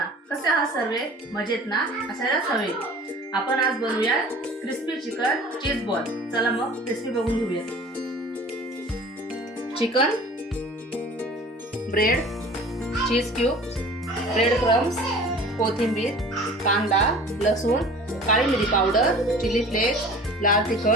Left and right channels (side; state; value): both; normal; correlation 0.44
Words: कसे आहात सर्वे? मजेत ना? असायलाच हवे. आपण आज बनवूया क्रिस्पी चिकन चीज बॉल. चला मग रेसिपी बघून घेऊया. चिकन, ब्रेड, चीज क्यूब्स, ब्रेड क्रम्स, कोथिंबीर, कांदा, लसूण, काळी मिरी पावडर, चिली फ्लेक्स, लाल